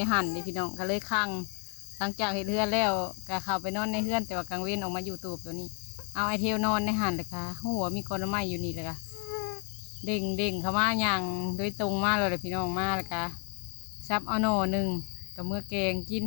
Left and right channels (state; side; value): quieter; right; 36.9 dB